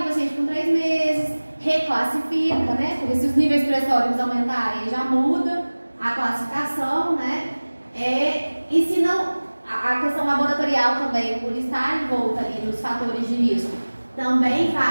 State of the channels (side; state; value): both; inverted; correlation -1.00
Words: o paciente com 3 meses, reclassifica, né? Porque se os níveis pressóricos aumentarem, já muda a classificação, né? E se não, a questão laboratorial também, por estar envolta ali nos fatores de risco, também